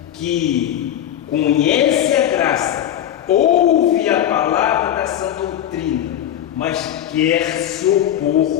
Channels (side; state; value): right; quieter; 11.1 dB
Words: que conhece a graça, ouve a palavra da sã doutrina, mas quer se